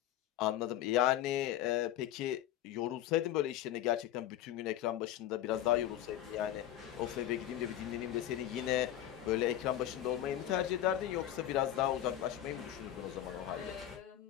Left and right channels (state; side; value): quieter; right; 12.1 dB